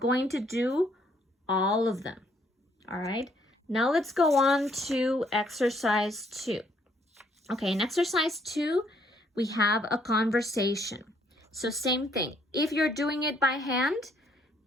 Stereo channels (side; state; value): both; normal; correlation 0.68